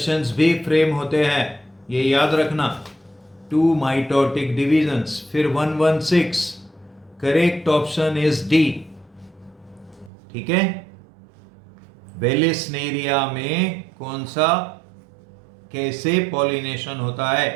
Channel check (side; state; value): left; drops out; at 10.1 s